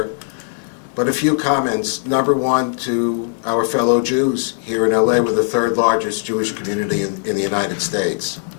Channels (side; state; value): right; silent; 57 dB below the other